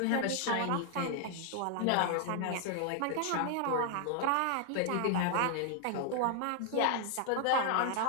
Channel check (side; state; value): both; different; correlation 0.00